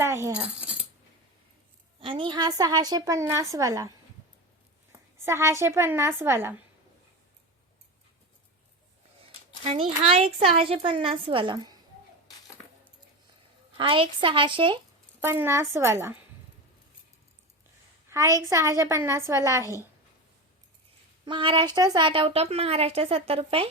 आहे हा. आणि हा 650 वाला 650 वाला. आणि हा एक 650 वाला. हा एक 650 वाला. हा एक 650 वाला आहे. महाराष्ट्र 60 आउट ऑफ महाराष्ट्र 70 रुपये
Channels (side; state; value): both; normal; correlation 0.23